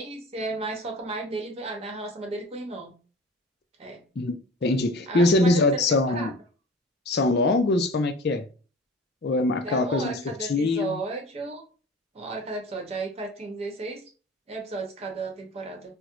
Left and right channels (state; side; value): normal; both; correlation 0.39